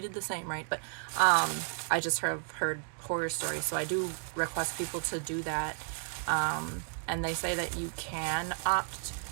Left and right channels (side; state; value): left; silent; 56 dB below the other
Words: the same, right? But I just have heard horror stories, so I do request people to do that. And they say that you can opt